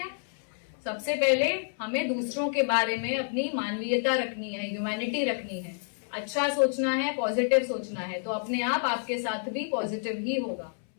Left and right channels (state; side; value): silent; right; 59 dB below the other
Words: सबसे पहले हमें दूसरों के बारे में अपनी मानवीयता रखनी है, ह्यूमैनिटी रखनी है, अच्छा सोचना है, पॉजिटिव सोचना है, तो अपने आप आपके साथ भी पॉजिटिव ही होगा।